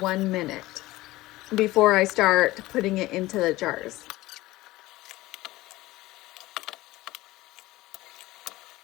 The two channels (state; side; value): quieter; right; 18.3 dB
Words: minute before I start putting it into the jars.